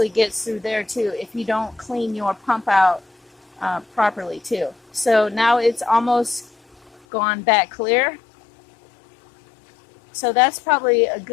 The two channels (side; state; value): right; drops out; at 7.0 s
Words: gets through there too if you don't clean your pump out properly too. So now it's almost gone back clear. So that's probably a